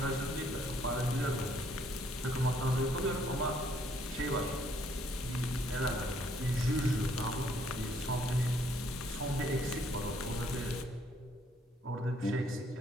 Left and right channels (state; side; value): normal; both; correlation 0.66